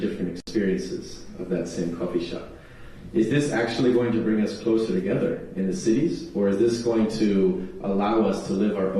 experiences of that same coffee shop. Is this actually going to bring us closer together in the cities, or is this going to allow us to live our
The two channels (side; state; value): both; identical; correlation 1.00